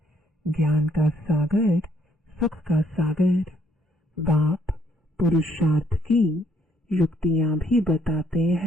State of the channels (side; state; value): both; normal; correlation 0.68